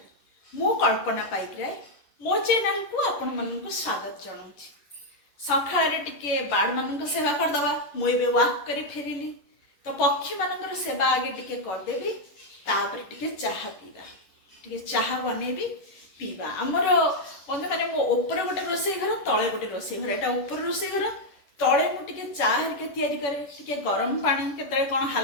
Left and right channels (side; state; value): right; late; 11 ms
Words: मु कल्पना पाइकराय मो channel को आपण मन को स्वागत जणाउछि. सखाळे टिके बाड मन को सेवा कर दवा. मु एबे वॉक करी फेरिली. तो पक्षी मानकर सेवा आगे टिके कर देबी. तापर टिके चाहा पीबा. टिके चाहा बनेबी पीवा. हमर बंधु माने मो ऊपर गोटे रोसई घर तळे गोटे रोसई घर. एटा ऊपर रोसई घर तळे मु टिके चाह हेरिके तयारी करे. टिके गरम पानी केतळे कोन